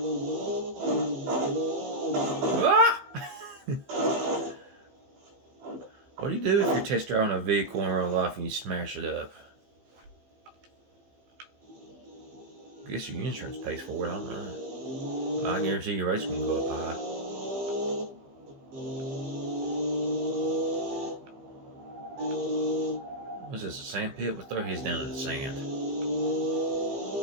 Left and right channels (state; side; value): late; left; 15 ms